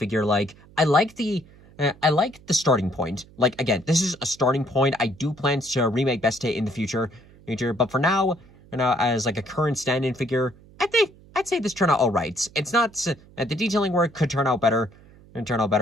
like I like the starting point. Like again, this is a starting point. I do plan to remake Beste in the future, but for now, as like a current stand-in figure, I'd say this turned out all right. It's not the detailing work could turn out better,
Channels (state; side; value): noise; right; hum, 25 dB below the sound